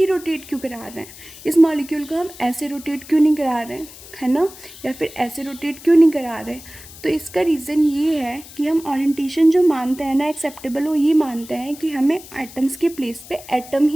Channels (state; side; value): noise; left; hiss, 18 dB below the sound